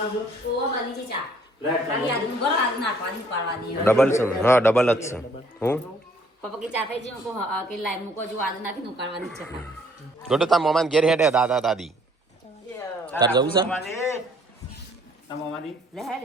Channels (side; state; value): both; normal; correlation 0.61